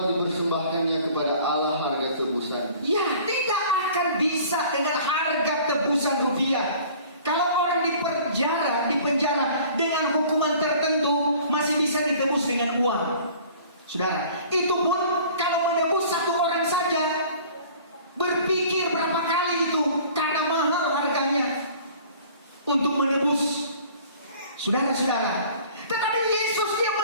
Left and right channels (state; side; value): inverted; both; correlation -0.49